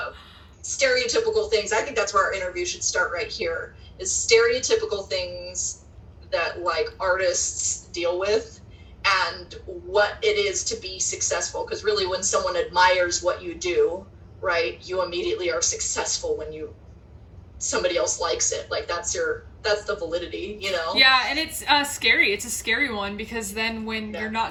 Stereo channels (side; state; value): both; identical; correlation 1.00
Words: stereotypical things. I think that's where our interview should start right here, is stereotypical things that like artists deal with and what it is to be successful. Because really when someone admires what you do, right, you immediately are successful when somebody else likes it. Like that's the validity, you know? Yeah, and it's scary. It's a scary one, because then when you're